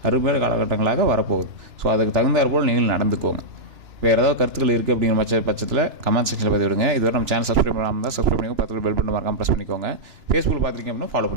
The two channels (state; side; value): late; left; 2.9 ms